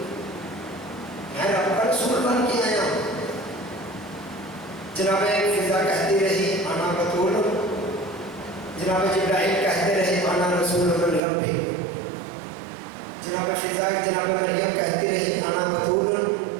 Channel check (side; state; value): left; drops out; at 11.2 s